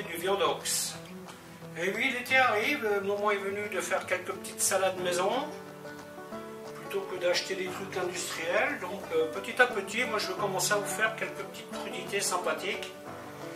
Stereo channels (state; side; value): identical; both; correlation 1.00